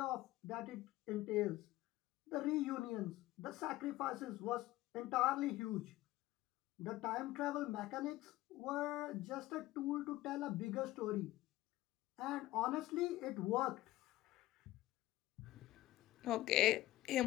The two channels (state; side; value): quieter; right; 16.6 dB